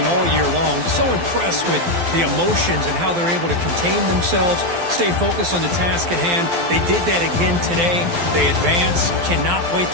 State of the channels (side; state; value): left; late; 12 ms